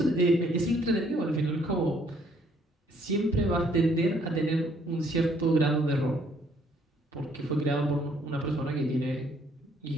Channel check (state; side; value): normal; both; correlation 0.65